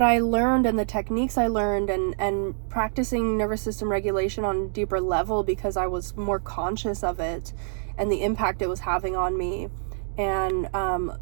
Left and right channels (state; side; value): silent; left; digital silence